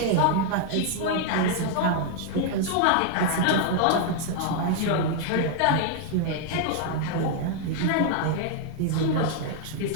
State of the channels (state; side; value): different; both; correlation 0.00